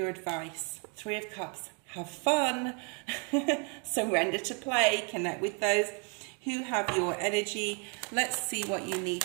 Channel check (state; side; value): quieter; left; 37.2 dB